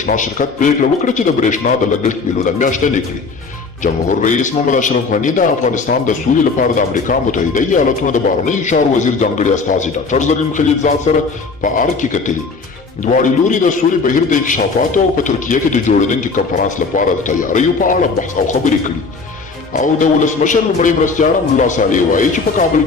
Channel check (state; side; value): quieter; right; 4.3 dB